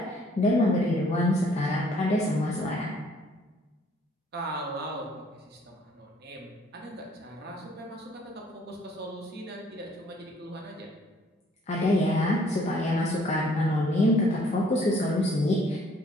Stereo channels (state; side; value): normal; both; correlation 0.61